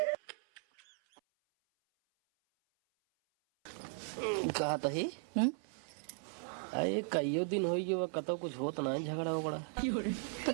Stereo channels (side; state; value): left; silent; 53 dB below the other